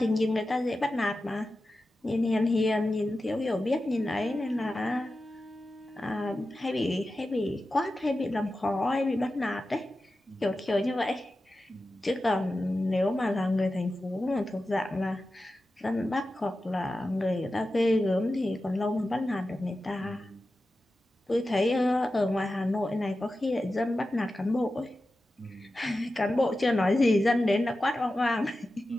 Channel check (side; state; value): both; normal; correlation 0.93